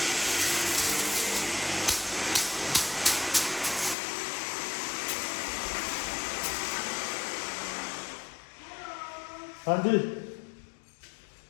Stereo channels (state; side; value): drops out; right; at 4.0 s